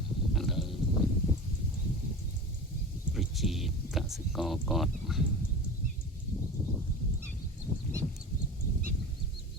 ឥឡូវប្រជាកសិករគាត់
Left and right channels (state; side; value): normal; both; correlation 0.32